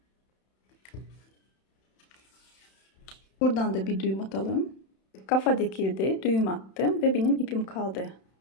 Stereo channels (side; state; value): right; late; 31 ms